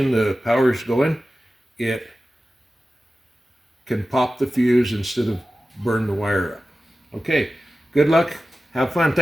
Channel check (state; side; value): normal; both; correlation 0.95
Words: the power is going, it can pop the fuse instead of burn the wire up. Okay, good luck. Have fun.